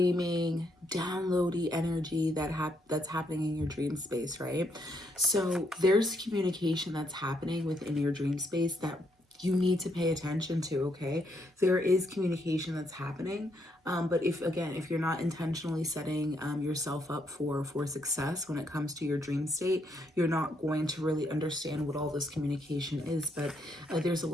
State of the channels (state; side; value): normal; both; correlation 0.75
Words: downloady energy that's happening in your dream space, right? So there's communication that's happening within your dream space that you need to pay attention to, okay? There is communication that's happening, but if you're not intentionally setting yourself up for success when it comes to your dream state, you're not going to really understand what all this communication is. But there's a